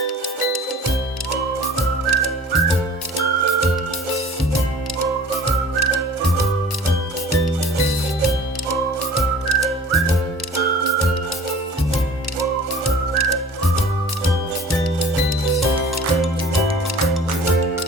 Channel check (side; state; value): both; normal; correlation 0.46